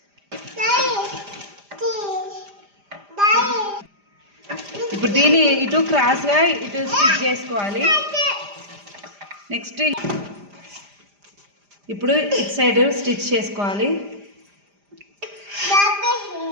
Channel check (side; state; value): left; late; 5.0 ms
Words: ఇప్పుడు దీన్ని ఇటు క్రాస్గా ఇటు స్టిచ్ చేసుకోవాలి. నెక్స్ట్ ఇప్పుడు ఇటు సైడ్ స్టిచ్ చేసుకోవాలి.